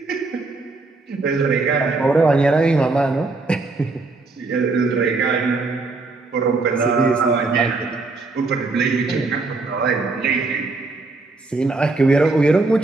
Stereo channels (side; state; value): left; quieter; 3.6 dB